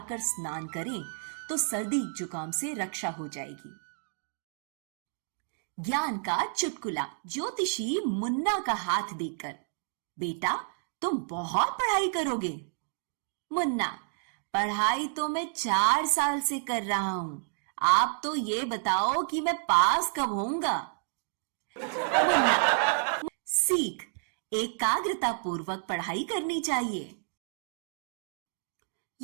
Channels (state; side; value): silent; left; digital silence